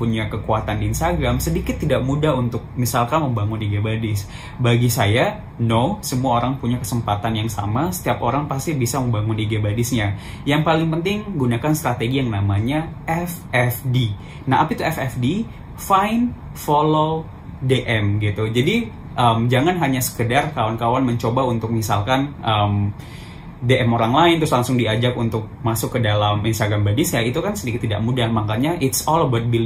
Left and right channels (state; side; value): identical; both; correlation 1.00